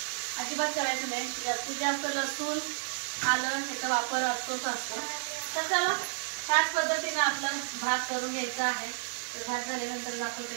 अजिबात करायचं नाही. जास्तीत जास्त लसूण आलं ह्याचा वापर असतोच असतो. तर चला त्याच पद्धतीनं आपलं भात करून घ्यायचा आहे. तर भात झाल्यानंतर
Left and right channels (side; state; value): left; silent; digital silence